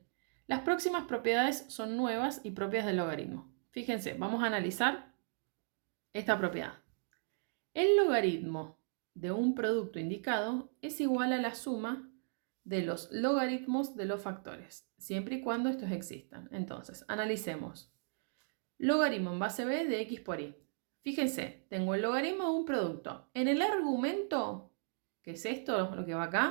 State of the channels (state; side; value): silent; left; digital silence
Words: las próximas propiedades son nuevas y propias del logaritmo. Fíjense, vamos a analizar esta propiedad. El logaritmo de un producto indicado es igual a la suma de los logaritmos de los factores, siempre y cuando estos existan. Entonces, analicemos. Logaritmo en base b de x por y. Fíjense, tengo el logaritmo de un producto. En el argumento, que es esto, lo que va